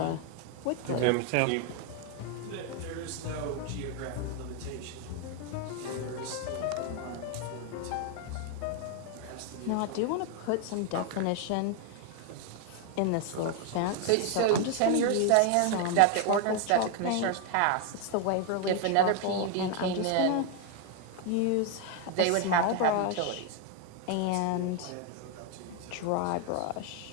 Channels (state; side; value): different; both; correlation 0.01